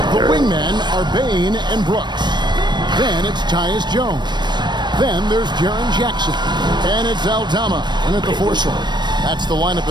The wingmen are Bain and Brooks. Then it's Tyus Jones. Then there's Jaren Jackson. And it's Aldama in at the 4 slot. That's the lineup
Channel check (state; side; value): late; left; 0.22 ms